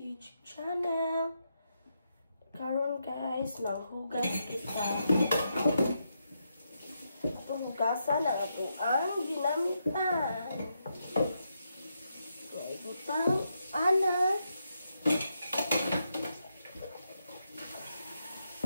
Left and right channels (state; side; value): inverted; both; correlation -0.82